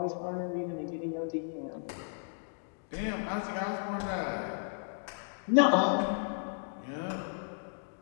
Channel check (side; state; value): right; silent; digital silence